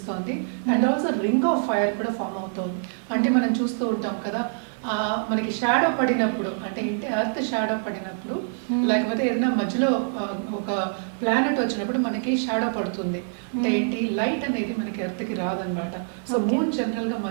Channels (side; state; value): left; silent; digital silence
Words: And also ring of fire కూడా ఫామ్ అవుతోంది. అంటే మనం చూస్తూ ఉంటాం కదా, మనకి షాడో పడినప్పుడు అంటే ఏంటి, ఎర్త్ షాడో పడినప్పుడు లేకపోతే ఏదైనా మధ్యలో ఒక ప్లానెట్ వచ్చినప్పుడు మనకి షాడో పడుతుంది. అంటే ఏంటి, లైట్ అనేది మనకి ఎర్త్కి రాదనమాట. సో మూన్ జనరల్గా